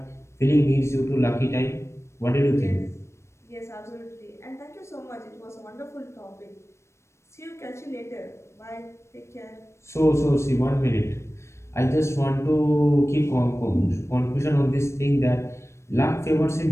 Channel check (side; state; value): right; late; 0.13 ms